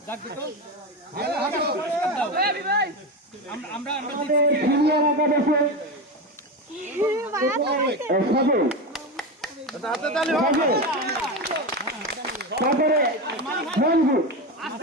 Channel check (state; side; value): normal; both; correlation 0.18